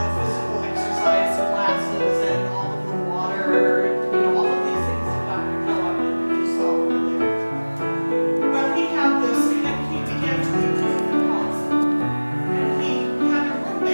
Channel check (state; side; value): inverted; both; correlation -1.00